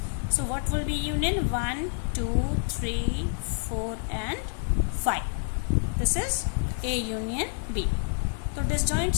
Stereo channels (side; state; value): right; silent; 59 dB below the other